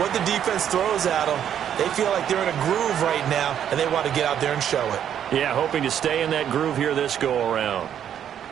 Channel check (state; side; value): quieter; left; 9.5 dB